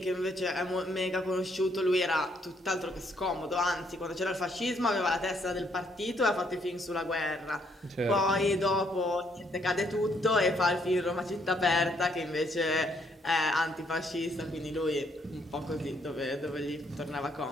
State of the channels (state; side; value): normal; both; correlation 0.70